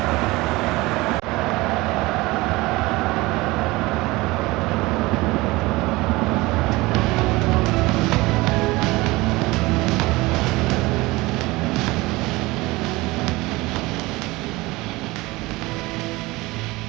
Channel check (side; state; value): left; quieter; 21.3 dB